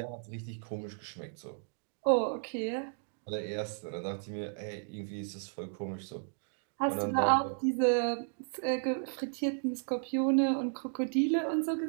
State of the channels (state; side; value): silent; left; digital silence